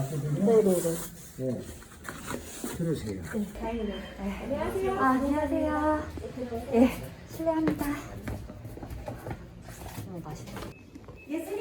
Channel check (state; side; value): identical; both; correlation 1.00